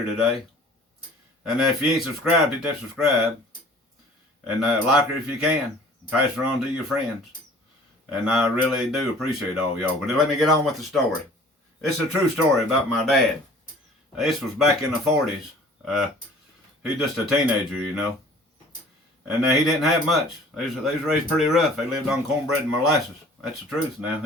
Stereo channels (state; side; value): normal; both; correlation 0.49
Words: today. And if you ain't subscribed, hit that subscribe. And like her if you can. Pass her on to your friends. And I really do appreciate all y'all. But let me get on with the story. It's a true story about my dad. This was back in the 40s. He's just a teenager, you know. And he didn't have much. They was raised pretty rough. They lived on cornbread and molasses. That's the truth now.